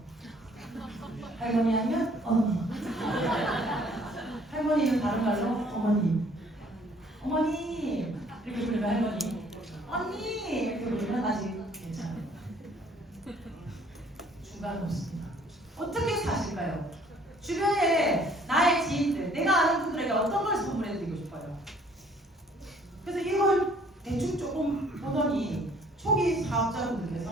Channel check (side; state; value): both; normal; correlation 0.59